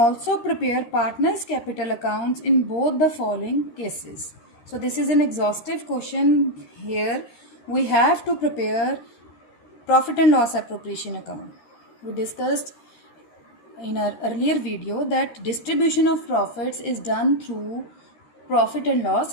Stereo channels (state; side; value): late; right; 13 ms